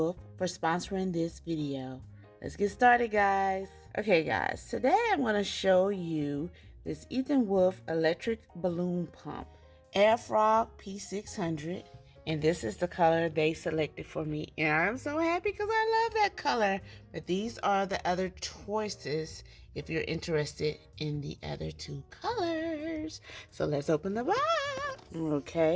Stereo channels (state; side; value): identical; both; correlation 1.00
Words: for sponsoring this video. Let's get started, guys. Okay, guys, today I'm going to show you this Etenwolf electric balloon pump, Etenwolf P600, and this is the color they selected for me, and I'm so happy because I love that color. But these are the other choices if you're interested in the other two colors. So let's open the box.